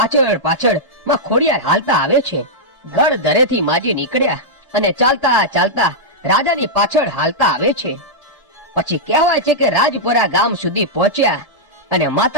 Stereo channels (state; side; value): normal; both; correlation -0.07